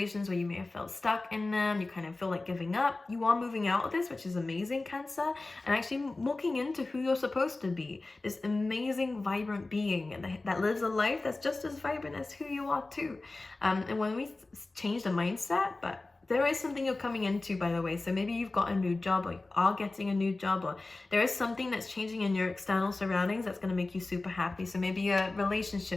where you may have felt stuck in them. You kind of feel like giving up. You are moving out of this, which is amazing, Cancer, and actually walking into who you're supposed to be, this amazing, vibrant being that lives a life that's just as vibrant as who you are too. And when we change the mindset, but there is something you're coming into, by the way. So maybe you've got a new job, or you are getting a new job, or there is something that's changing in your external surroundings that's going to make you super happy. So maybe your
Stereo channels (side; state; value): right; quieter; 3.2 dB